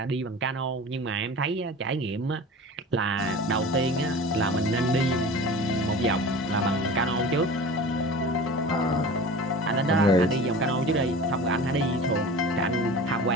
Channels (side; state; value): both; normal; correlation 0.37